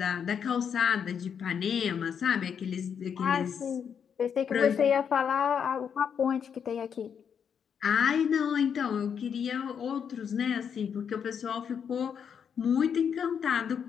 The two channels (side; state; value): right; quieter; 7.5 dB